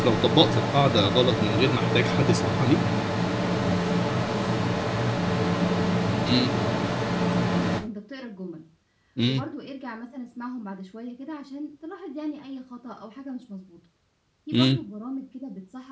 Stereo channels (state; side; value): identical; both; correlation 1.00